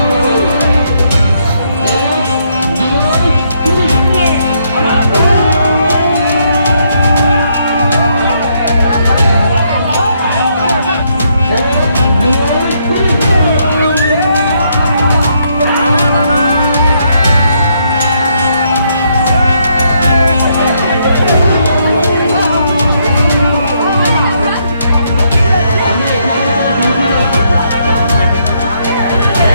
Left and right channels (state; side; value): inverted; both; correlation -0.74